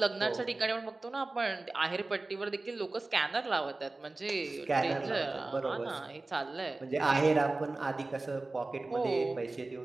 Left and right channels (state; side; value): quieter; left; 3.2 dB